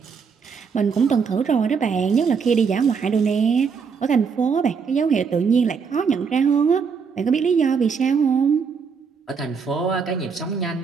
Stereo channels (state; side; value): quieter; left; 5.9 dB